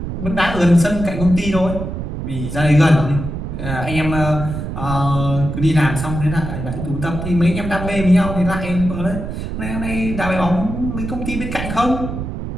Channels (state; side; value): noise; right; rumble, 6 dB below the sound